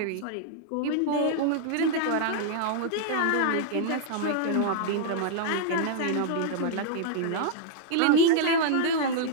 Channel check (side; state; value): both; different; correlation -0.01